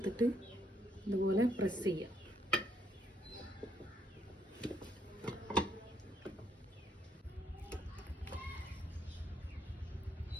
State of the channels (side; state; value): both; normal; correlation 0.72